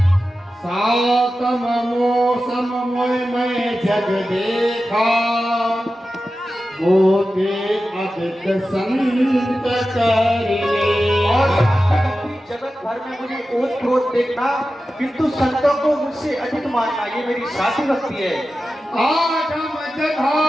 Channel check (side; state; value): both; normal; correlation 0.93